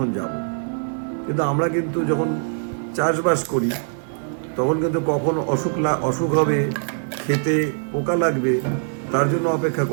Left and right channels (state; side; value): silent; left; 60 dB below the other